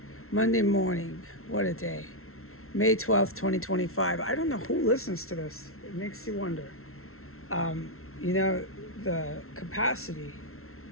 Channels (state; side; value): late; right; 0.62 ms